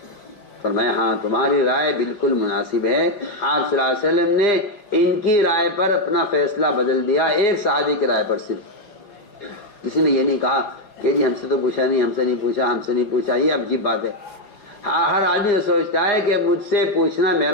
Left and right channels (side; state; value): right; late; 4.9 ms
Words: فرمایا ہاں تمہاری رائے بالکل مناسب ہے. آپ صلی اللہ علیہ وسلم نے ان کی رائے پر اپنا فیصلہ بدل دیا, ایک صحابی کی رائے پر صرف. کسی نے یہ نہیں کہا کہ جی ہم سے تو پوچھا نہیں, ہم سے نہیں پوچھا, ہم سے نہیں پوچھا. یہ عجیب بات ہے. ہر آدمی تو سوچتا ہے کہ مجھ سے پوچھنا